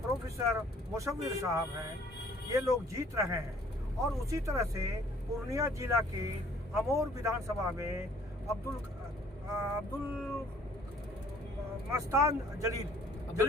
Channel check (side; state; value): both; normal; correlation 0.58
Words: प्रोफेसर मुशव्विर साहब हैं। ये लोग जीत रहे हैं। और उसी तरह से पूर्णिया जिला के अमोर विधानसभा में अब्दुल